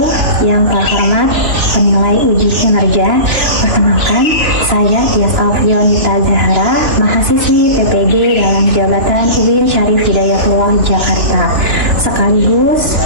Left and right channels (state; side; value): late; left; 2.9 ms